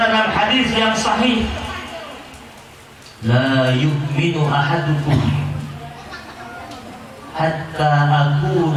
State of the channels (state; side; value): identical; both; correlation 1.00